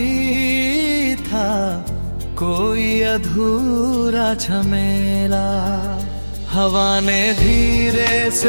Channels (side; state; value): both; inverted; correlation -1.00